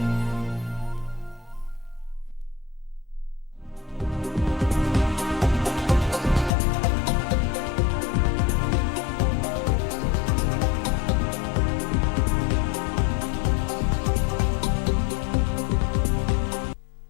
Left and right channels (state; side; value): drops out; right; at 6.5 s